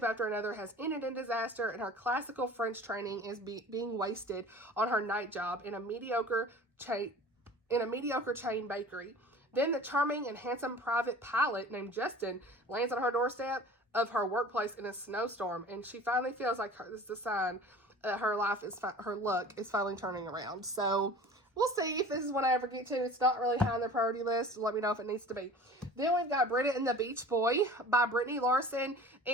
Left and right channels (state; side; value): normal; both; correlation 0.42